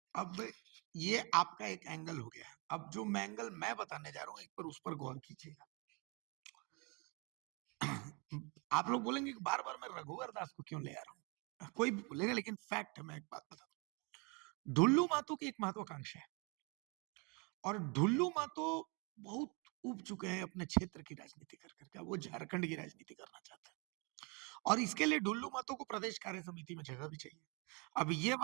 अब ये आपका एक एंगल हो गया। अब जो एंगल मैं बताने जा रहा हूँ, एक बार उस पर गौर कीजिएगा। आप लोग बोलेंगे कि बार बार मैं रघुवर दास को क्यों ले आ रहा हूँ, कोई भी बोलेगा, लेकिन फैक्ट है। मैं एक बात बताता हूँ, ढुल्लू महतो की एक महत्वाकांक्षा है, और ढुल्लू महतो बहुत उब चुके हैं अपने क्षेत्र की राजनीति कर करके। वो झारखंड की राजनीति करना चाहते हैं, और इसके लिए ढुल्लू महतो को प्रदेश कार्य समिति में जगह भी चाहिए। अब ये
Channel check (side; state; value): left; quieter; 31.3 dB